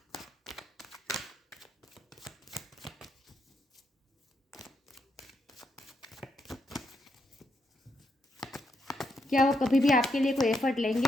क्या वो कभी भी आपके लिए कोई एफर्ट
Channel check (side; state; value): both; normal; correlation 0.79